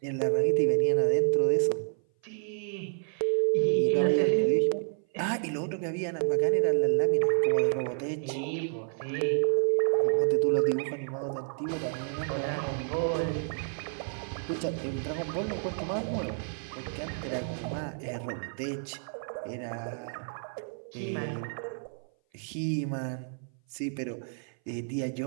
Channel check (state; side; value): silent; left; 56 dB below the other